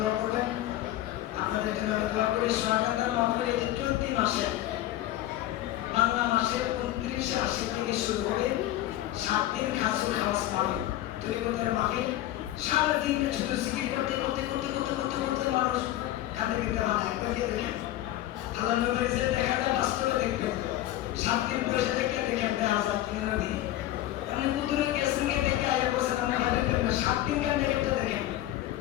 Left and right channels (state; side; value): quieter; right; 14.2 dB